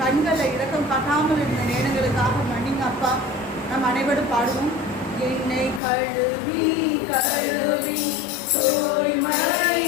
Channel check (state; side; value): drops out; right; at 5.8 s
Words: கண்களில் இரக்கம் காட்டாமல் இருந்த நேரங்களுக்காக மன்னிங்க அப்பா. நாம் அனைவரும் பாடுவோம். என்னை கழுவி கழுவி தூய்மையாக்கும்